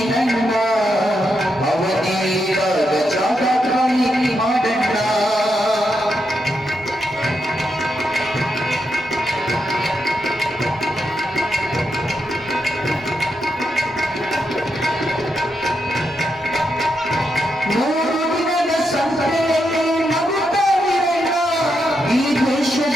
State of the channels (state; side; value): normal; both; correlation 0.83